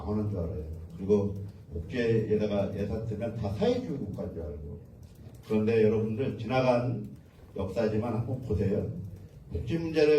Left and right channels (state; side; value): identical; both; correlation 1.00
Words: 줄 알아요. 그리고 복지에다가 예산 쓰면 다 사회주의 국가인 줄 알고. 그런데 여러분들 지나간 역사지만 한번 보세요. 복지